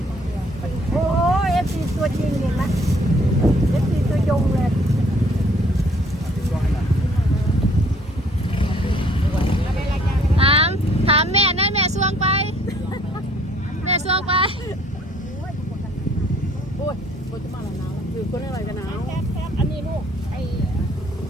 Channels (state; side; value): normal; both; correlation 0.60